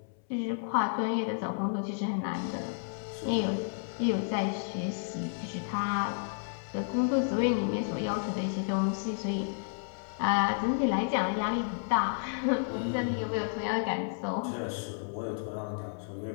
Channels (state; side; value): silent; right; 57 dB below the other